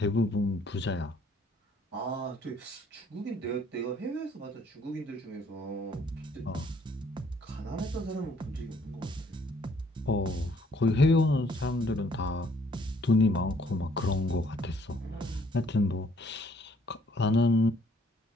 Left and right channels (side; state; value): both; normal; correlation 0.63